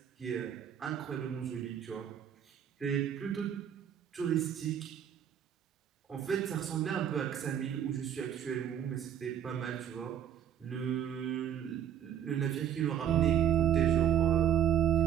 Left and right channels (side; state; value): left; quieter; 9.6 dB